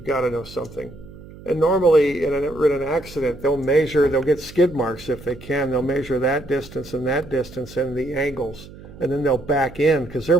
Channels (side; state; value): right; noise; hum, 18 dB below the sound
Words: got to know something. And normally in an accident, they'll get skid marks if they can. They'll measure that distance and the angles, and then they'll back in because they're